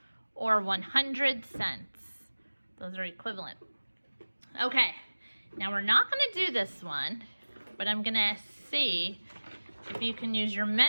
or 100 cents. Those are equivalent. Okay, now we're not going to do this one, but I'm going to see if you can use your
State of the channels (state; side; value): inverted; both; correlation -1.00